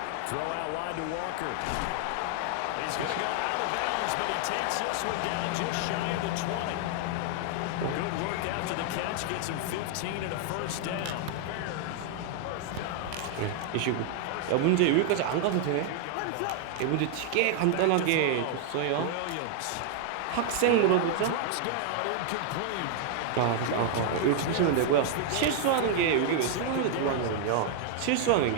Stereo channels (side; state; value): both; different; correlation 0.00